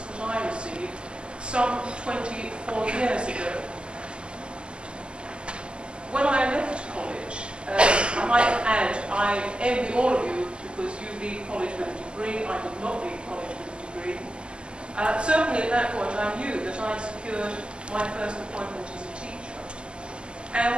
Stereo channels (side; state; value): left; late; 0.050 ms